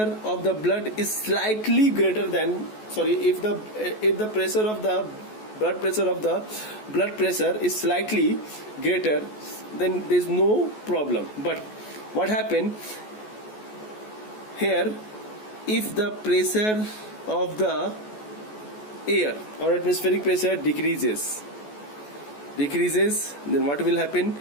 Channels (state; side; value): late; right; 14 ms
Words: of the blood is slightly greater than, if the pressure of the blood pressure is slightly greater, then there is no problem. But what happened here, if the pressure of the air or atmospheric pressure decreases, then what will happen?